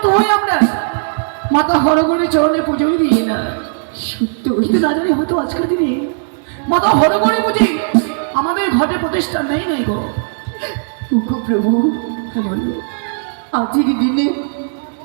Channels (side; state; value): left; silent; digital silence